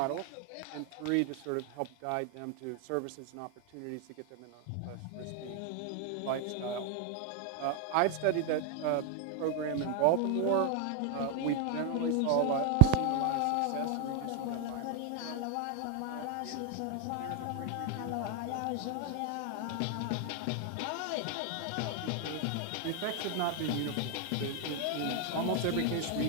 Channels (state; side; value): different; both; correlation 0.00